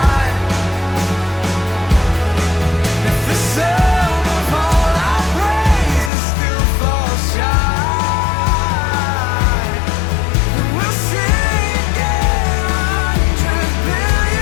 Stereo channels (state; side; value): drops out; right; at 6.1 s